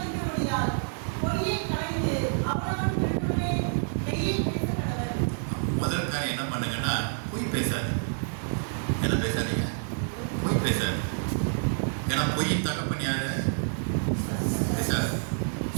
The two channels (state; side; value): silent; left; digital silence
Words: முதல் காரியம் என்ன பண்ணுங்கன்னா, பொய் பேசாது. என்ன பேசாதீங்க, பொய் பேசாது. ஏன்னா பொய்யின் தகப்பன் யாரு, பேசாது.